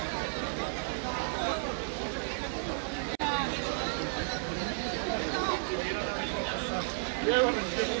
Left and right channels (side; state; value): left; silent; 56 dB below the other